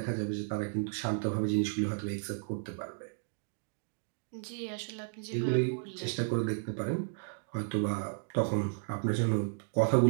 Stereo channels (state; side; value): silent; left; digital silence